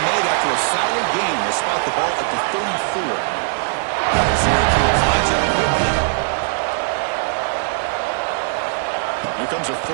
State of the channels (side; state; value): left; silent; digital silence